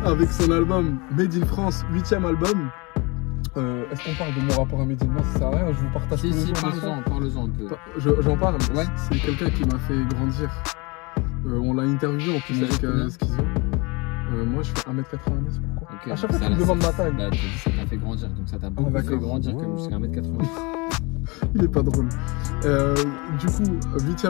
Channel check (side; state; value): right; quieter; 27.4 dB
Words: avec son album Made in France, 8e album. Est-ce qu'on parle de mon rapport à Medine? Non, ça sert à rien, je vous partage tous les jours. Parle-en un peu. J'en parle, ouais. C'est quelqu'un qui m'a fait grandir. On l'a interviewé en plus avec Schizo. Moi je fais 1m90, pourquoi? Okay, à chaque fois tu me demandes ma taille. Bah, ça t'a fait grandir, donc ça t'a beaucoup fait grandir comme jusqu'à 1m90. Il est pas drôle. Du coup,